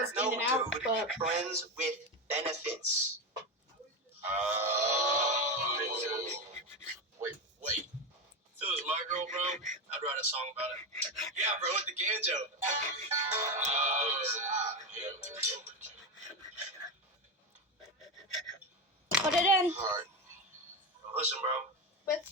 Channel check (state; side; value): normal; both; correlation 0.15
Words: in and out, but friends with benefits. Wait. If it was my girl, bro, I'd write a song about it. Yeah, bro, with the banjo. Put it in. All right. Listen, bro, with